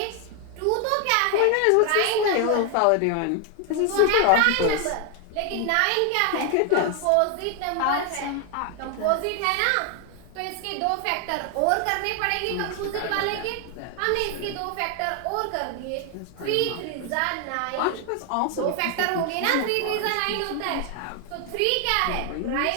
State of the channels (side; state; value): both; different; correlation 0.01